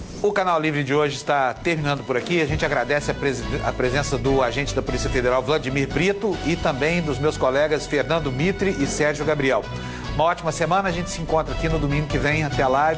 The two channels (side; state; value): both; identical; correlation 1.00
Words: O Canal Livre de hoje está terminando por aqui. A gente agradece a presença do agente da Polícia Federal, Vladimir Brito, e também dos meus colegas Fernando Mitre e Sérgio Gabriel. Uma ótima semana, a gente se encontra aqui no domingo que vem. Até lá e